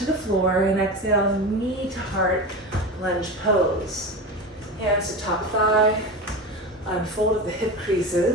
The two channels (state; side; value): normal; both; correlation 0.25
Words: the floor and exhale, knee to heart, lunge pose. Hands to top thigh, unfold at the hip